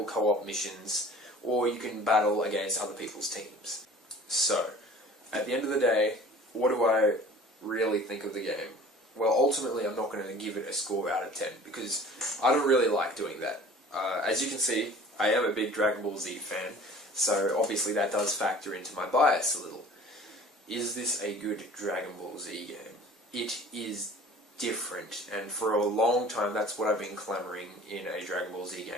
co-op missions or you can battle against other people's teams. So, at the end of the day, what do I really think of the game? Well, ultimately I'm not going to give it a score out of 10, because I don't really like doing that. As you can see, I am a big Dragon Ball Z fan, so obviously that does factor into my bias a little. Is this a good Dragon Ball Z game? It is different, and for a long time that's what I've been clamoring in a Dragon Ball Z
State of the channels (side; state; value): both; normal; correlation 0.46